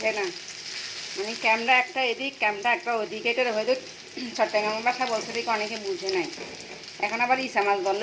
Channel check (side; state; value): both; identical; correlation 1.00